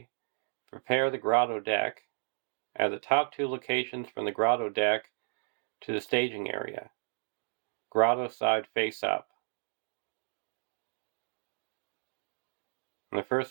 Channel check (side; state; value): left; silent; digital silence